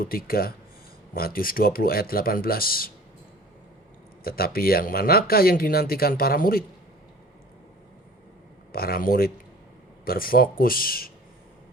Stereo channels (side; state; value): both; normal; correlation 0.45